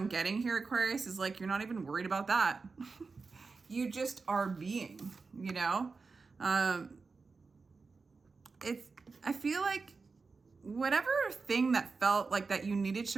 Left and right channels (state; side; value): quieter; left; 4.4 dB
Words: getting here, Aquarius, is like, you're not even worried about that. You just are being, you know? I feel like whatever thing that felt like that you needed